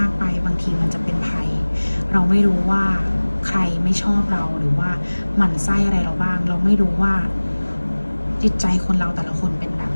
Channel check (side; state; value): both; inverted; correlation -1.00